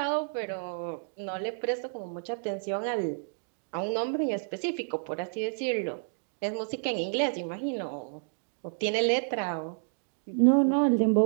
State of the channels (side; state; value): left; silent; digital silence